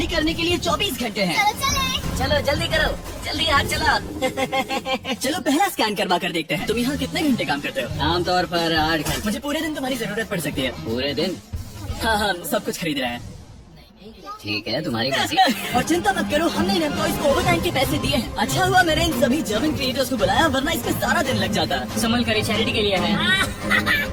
करने के लिए 24 घंटे हैं। चलो चले। चलो जल्दी करो, जल्दी हाथ चला। चलो पहला स्कैन करवा कर देखते हैं। तुम यहाँ कितने घंटे काम करते हो? आमतौर पर 8 घंटे। मुझे पूरे दिन तुम्हारी जरूरत पड़ सकती है। पूरे दिन? हाँ, हम सब कुछ खरीद रहे हैं। ठीक है, तुम्हारी मर्जी। और चिंता मत करो, हमने इन एम्प्लॉइज को ओवर टाइम के पैसे दिए हैं। अच्छा हुआ मैंने इन सभी जर्मन क्रिएटर्स को बुलाया, वरना इसमें सारा दिन लग जाता। संभल कर चैरिटी के लिए है।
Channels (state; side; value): identical; both; correlation 1.00